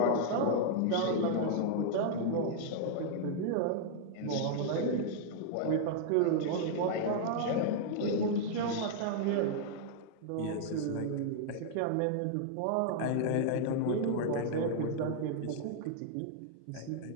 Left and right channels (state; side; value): different; both; correlation -0.01